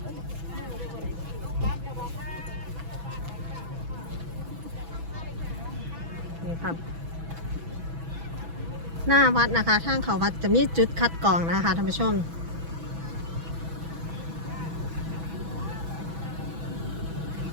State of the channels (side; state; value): left; late; 6.1 ms